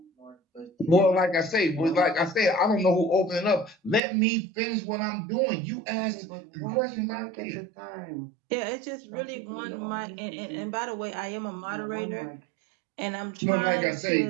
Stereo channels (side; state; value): left; drops out; at 4.0 s